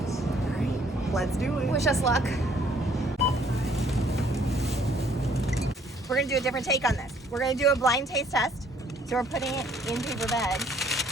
right, let's do it. Wish us luck. We're gonna do a different take on this. We're gonna do a blind taste test. So we're putting it in paper bags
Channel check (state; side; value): normal; both; correlation 0.62